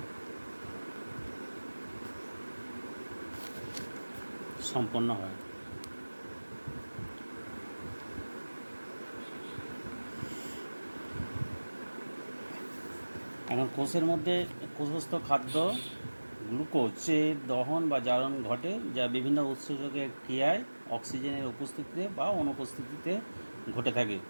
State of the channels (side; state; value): both; inverted; correlation -1.00